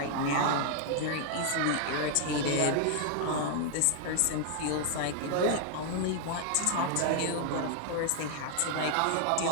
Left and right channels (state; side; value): different; both; correlation 0.00